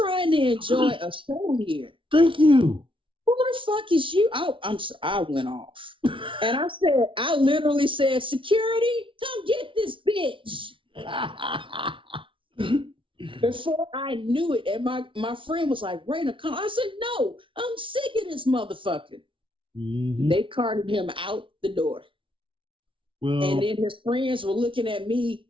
to enjoy a show here. Thank you. Who the fuck is you? I went off. And I literally said, security, come get this bitch. Before I knew it, and my friend was like, Rayna, come. I said, no, I'm sick of this motherfucker. Mm-hmm. They carted him out the door. Well, and then his friends were looking at me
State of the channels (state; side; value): late; left; 0.25 ms